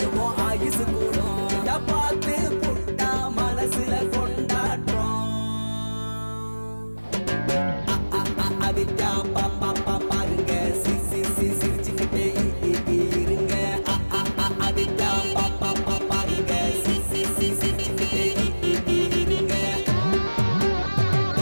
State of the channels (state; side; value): inverted; both; correlation -1.00